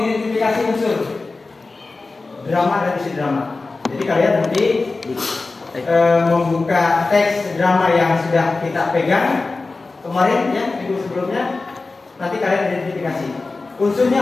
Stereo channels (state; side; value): quieter; right; 3.6 dB